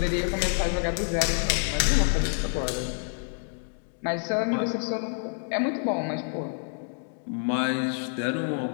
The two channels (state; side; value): silent; right; 59 dB below the other